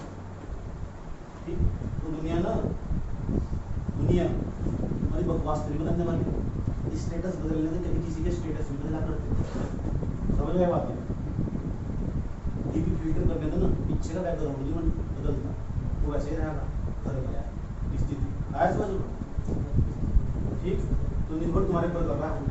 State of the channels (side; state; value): both; identical; correlation 1.00